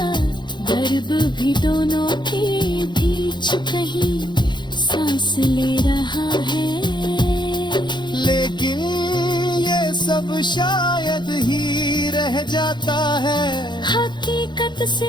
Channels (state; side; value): late; right; 0.22 ms